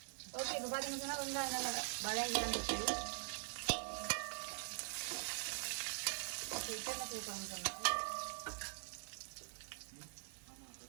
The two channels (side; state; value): left; silent; digital silence